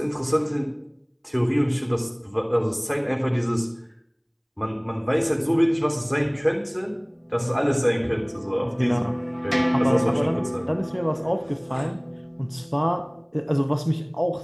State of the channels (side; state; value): both; identical; correlation 1.00